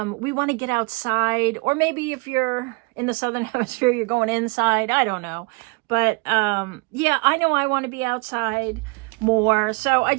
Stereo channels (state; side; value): quieter; left; 30.1 dB